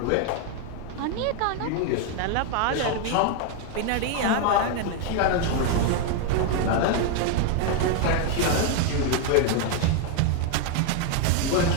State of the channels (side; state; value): both; different; correlation 0.01